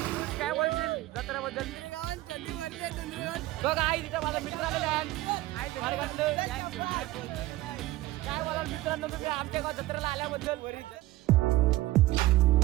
काय बोलशील जत्रेबद्दल? बघा आई तिथं माझा मित्र आलेला आहे. काय बोलाल मित्रांनो तुम्ही आमच्या गाव जत्रेला आल्याबद्दल?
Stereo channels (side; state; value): left; quieter; 17.1 dB